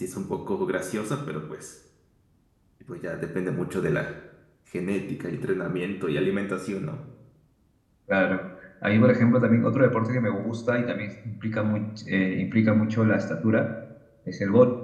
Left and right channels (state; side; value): identical; both; correlation 1.00